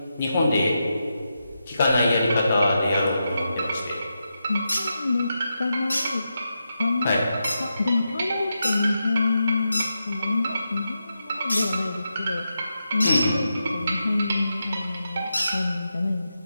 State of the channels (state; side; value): inverted; both; correlation -0.87